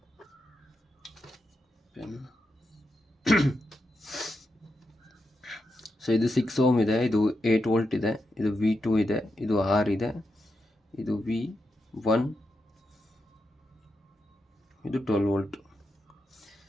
ಸೊ ಇದು 6 ಓಮ್ ಇದೆ, ಇದು 8 ವೋಲ್ಟ್ ಇದೆ, ಇದು V2 ಇದೆ, ಇದು R ಇದೆ, ಇದು V1, ಇದು 12 ವೋಲ್ಟ್.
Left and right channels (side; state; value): both; normal; correlation 0.86